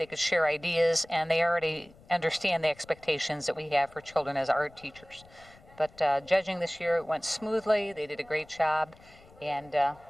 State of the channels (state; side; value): noise; left; rumble, 25 dB below the sound